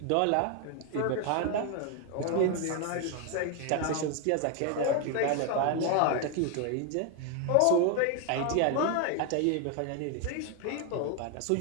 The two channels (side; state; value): both; different; correlation 0.01